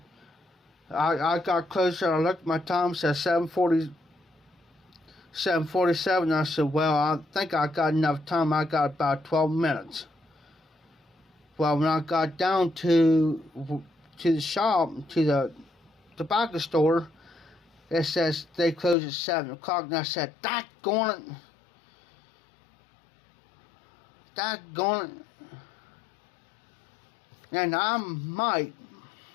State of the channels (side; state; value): right; drops out; at 18.9 s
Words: I got closer, I looked at my time, it said 7:47. I said, well, I think I got enough time. I got about 12 minutes. Well, when I got down to the shop, to the tobacco store, it says they close at 7 o'clock. And I said, daggone it. And I might